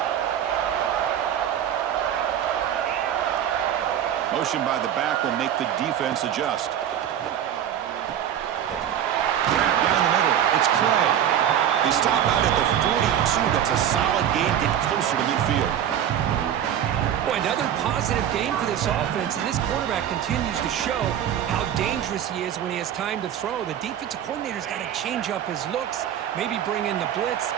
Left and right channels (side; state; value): left; quieter; 10.0 dB